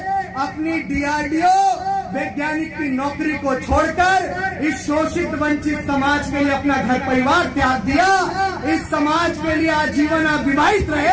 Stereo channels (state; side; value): identical; both; correlation 1.00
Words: अपनी DRDO वैज्ञानिक की नौकरी को छोड़कर इस शोषित वंचित समाज के लिए अपना घर परिवार त्याग दिया। इस समाज के लिए आजीवन अविवाहित